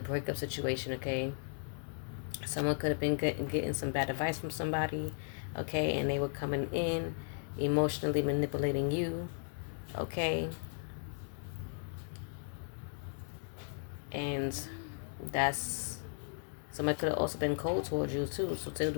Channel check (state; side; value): silent; right; 54 dB below the other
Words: breakup situation, okay? Someone could have been getting some bad advice from somebody, okay? And they were coming in, emotionally manipulating you, okay? And that's, somebody could have also been cold towards you too. So